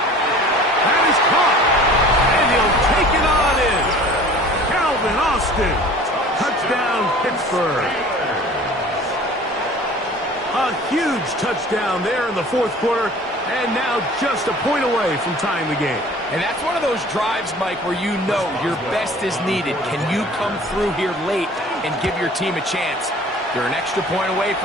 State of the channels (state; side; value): normal; both; correlation 0.46